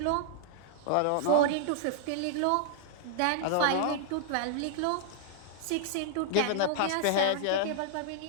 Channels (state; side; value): different; both; correlation -0.01